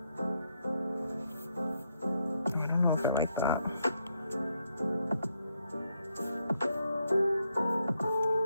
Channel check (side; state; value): both; inverted; correlation -0.77